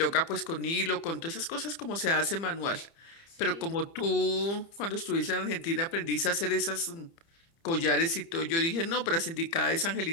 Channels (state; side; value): late; right; 30 ms